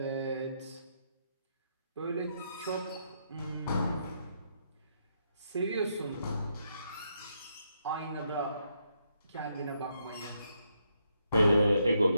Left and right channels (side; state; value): both; inverted; correlation -0.78